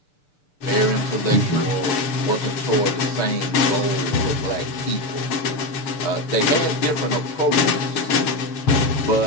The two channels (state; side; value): late; right; 6.7 ms